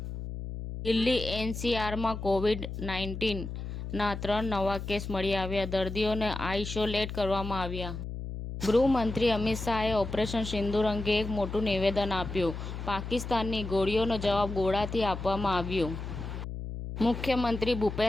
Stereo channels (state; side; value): noise; left; hum, 7 dB below the sound